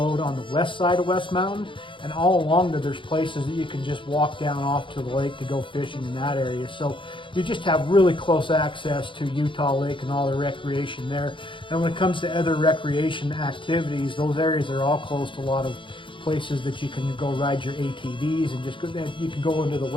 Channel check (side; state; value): right; late; 0.24 ms